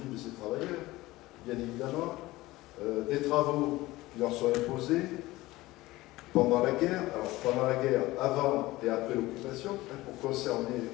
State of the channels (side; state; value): right; quieter; 18.6 dB